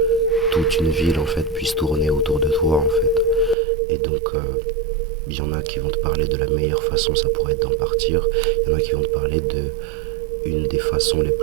toute une ville en fait puisse tourner autour de toi en fait. Et donc il y en a qui vont te parler de la meilleure façon, ça pourrait être d'en partir. Il y en a qui vont te parler de une des façons les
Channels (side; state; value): left; drops out; at 3.6 s